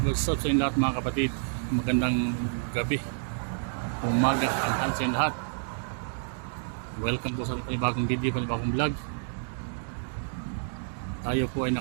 What's up sa inyo lahat mga kapatid? Magandang gabi, umaga, tanghali sa inyo lahat. Welcome po sa panibagong video, panibagong vlog. Tayo po ay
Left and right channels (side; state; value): left; silent; digital silence